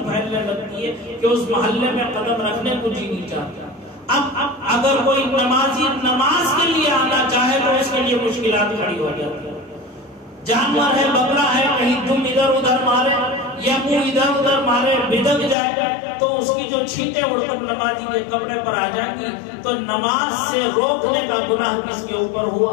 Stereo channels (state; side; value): drops out; right; at 15.6 s